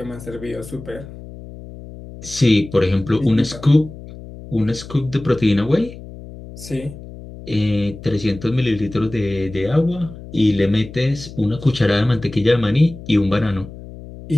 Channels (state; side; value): noise; left; hum, 15 dB below the sound